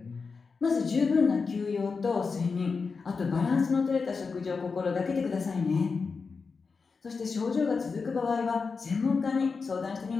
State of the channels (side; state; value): right; quieter; 4.9 dB